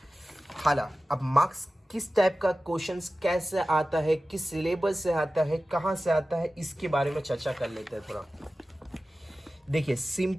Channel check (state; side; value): normal; both; correlation 0.95